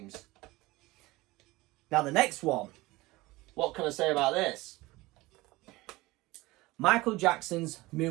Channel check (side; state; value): left; quieter; 20.4 dB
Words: Now, the next one. What can I say about this? Michael Jackson's